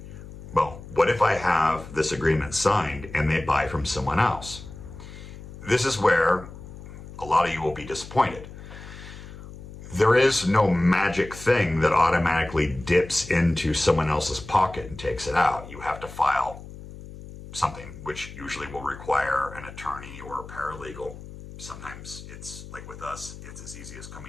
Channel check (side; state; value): left; noise; hum, 14 dB below the sound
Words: Well, what if I have this agreement signed and they buy from someone else? This is where a lot of you will be disappointed. There is no magic thing that automatically dips into someone else's pocket and takes it out. You have to file something, which usually will require an attorney or a paralegal. Sometimes it's like with us, it's as easy as